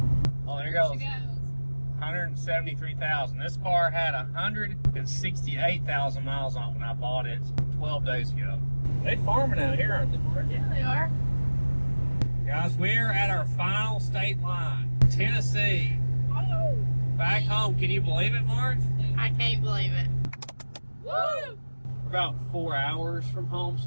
Oh, there goes. 173,000. This car had 168,000 miles on it when I bought it 12 days ago. They farming out here, aren't they, Mark? Yeah, they are. Guys, we're at our final state line, Tennessee. Oh. Back home. Can you believe it, Marge? I can't believe it. Woo! We're about 4 hours from home,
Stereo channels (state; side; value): inverted; both; correlation -1.00